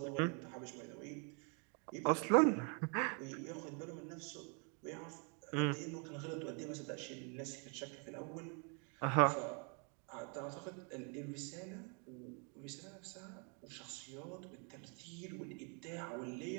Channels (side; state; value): left; quieter; 37.2 dB